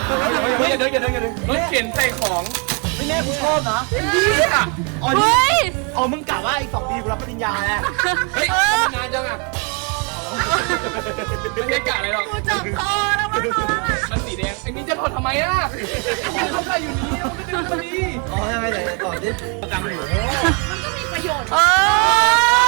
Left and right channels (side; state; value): left; quieter; 35.6 dB